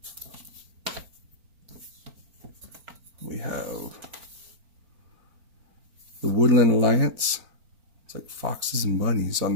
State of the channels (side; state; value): left; late; 4.4 ms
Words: We have the Woodland Alliance. It's like foxes and bunnies on